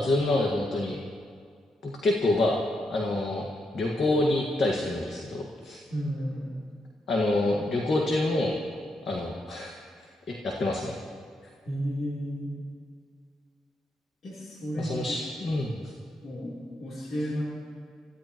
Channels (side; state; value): both; normal; correlation 0.81